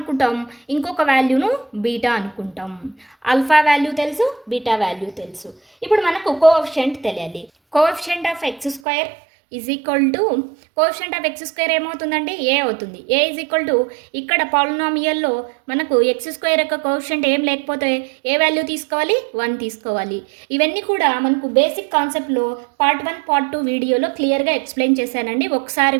ఇంకొక వాల్యూను బీటా అనుకుంటాం. ఆల్ఫా వాల్యూ తెలుసు, బీటా వాల్యూ తెలుసు. ఇప్పుడు మనకు కోఎఫిషియంట్ తెలియాలి. కోఎఫిషియంట్ ఆఫ్ x² ఏమవుతుందండి? ఏ అవుతుంది. ఏ ఇక్కడ పాలినామియల్లో మనకు x² యొక్క కోఎఫిషియంట్ ఏం లేకపోతే ఏ వాల్యూ తీసుకోవాలి? 1 తీసుకోవాలి. ఇవన్నీ కూడా మనకు బేసిక్ కాన్సెప్ట్లో పార్ట్ 1, పార్ట్ 2 వీడియోలో క్లియర్గా ఎక్స్ప్లెయిన్ చేశానండి. ఒకసారి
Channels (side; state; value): left; drops out; at 8.8 s